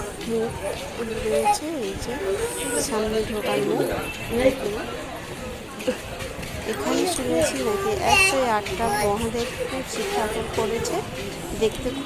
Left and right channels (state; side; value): identical; both; correlation 1.00